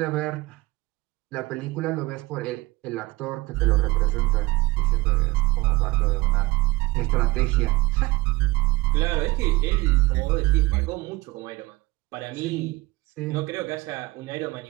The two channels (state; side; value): quieter; left; 21.3 dB